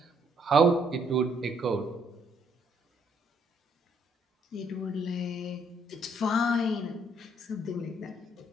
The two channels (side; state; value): both; normal; correlation 0.69